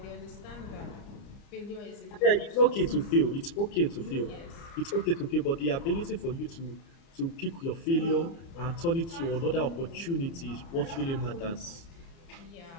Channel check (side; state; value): right; late; 30 ms